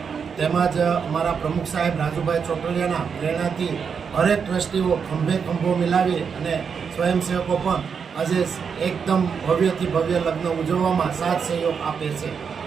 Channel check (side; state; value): left; quieter; 6.4 dB